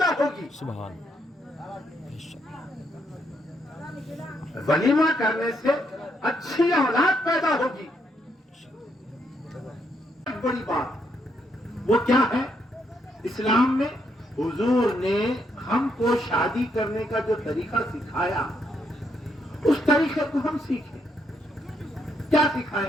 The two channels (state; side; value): normal; both; correlation 0.76